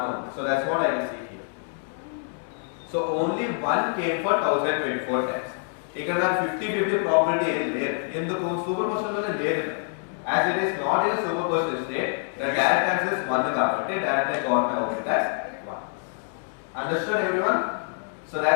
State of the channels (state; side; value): silent; right; 61 dB below the other